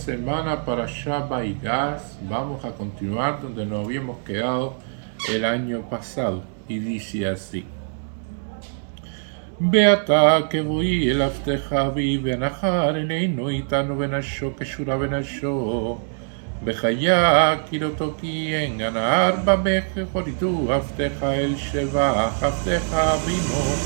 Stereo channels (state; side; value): silent; left; digital silence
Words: para Shabbat y Gas vamos a continuar donde nos habíamos quedado el año pasado. Y dice así. Beata que voy el afteja vi benajar eneinu itanu benasho que shura benasho. בחיה כי לא תוקי גנר במך חוריתו עבדך אל שבח עבדך אבינו